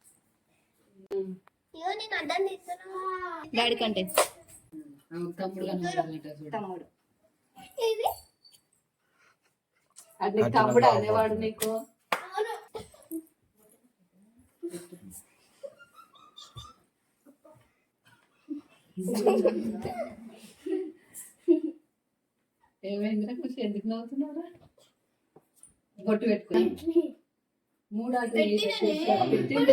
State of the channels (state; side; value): identical; both; correlation 1.00